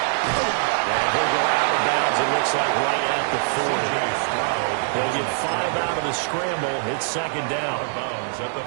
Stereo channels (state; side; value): silent; left; digital silence